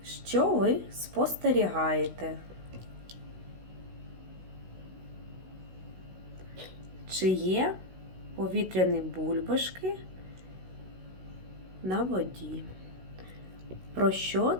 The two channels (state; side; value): late; left; 16 ms